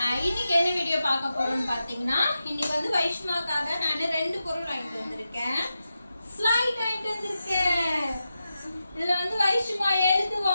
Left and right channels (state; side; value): inverted; both; correlation -0.90